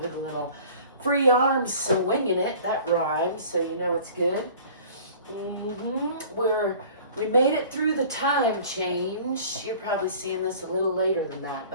a little free arms, so winging it, that rhymes, so you know it's good. We made it through the time change. You're probably seeing this a little later than that,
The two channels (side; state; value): both; inverted; correlation -0.46